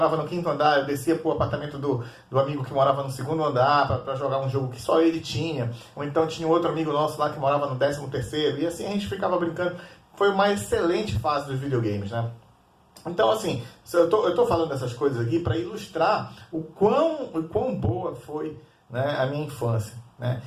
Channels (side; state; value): both; identical; correlation 1.00